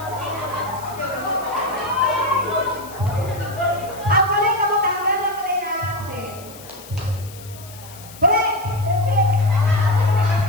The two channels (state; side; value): noise; left; hiss, 18 dB below the sound